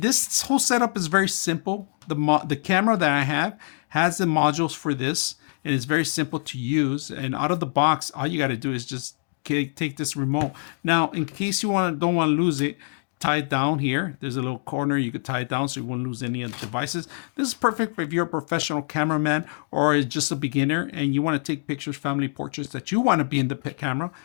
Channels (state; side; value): silent; right; digital silence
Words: this whole setup is very simple. The camera that I have has the modules for this, and it's very simple to use. And out of the box, all you got to do is just take this remote. Now, in case you don't want to lose it, tie it down here. There's a little corner you could tie it down so you won't lose any of the devices. This is perfect if you're a professional cameraman or just a beginner and you want to take pictures, family portraits that you want to be in the camera.